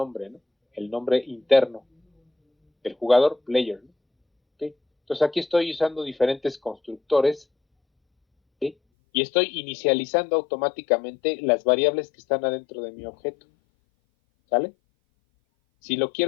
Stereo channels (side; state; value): right; drops out; at 8.8 s